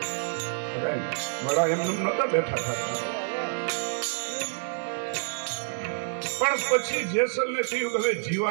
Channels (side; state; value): left; silent; digital silence